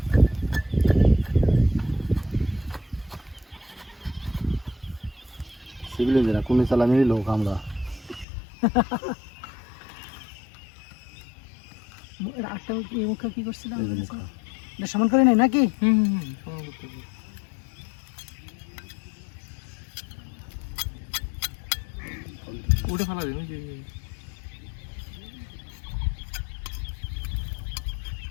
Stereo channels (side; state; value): right; drops out; at 8.2 s